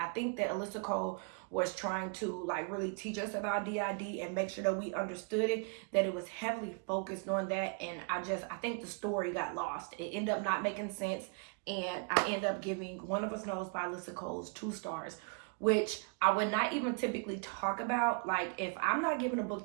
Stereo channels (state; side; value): quieter; left; 38.1 dB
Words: think that Alyssa Cole was trying to like really teach us about DID and make sure that we understood it, that it was heavily focused on that. And I think the story got lost. It ended up not making sense, and I ended up giving One of Us Knows by Alyssa Cole's 2 stars, which I would not even typically talk about. Like, if I'm not giving a